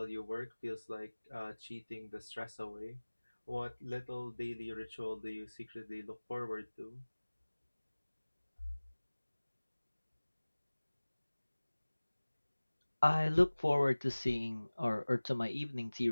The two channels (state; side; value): inverted; both; correlation -1.00